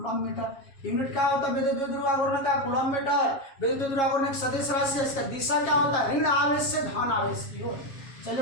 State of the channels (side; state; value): right; late; 7.4 ms